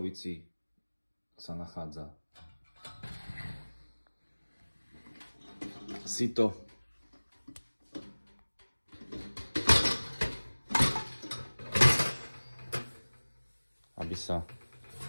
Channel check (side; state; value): both; inverted; correlation -1.00